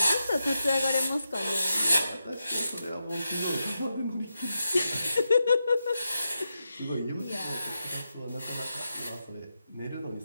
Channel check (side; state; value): both; inverted; correlation -0.87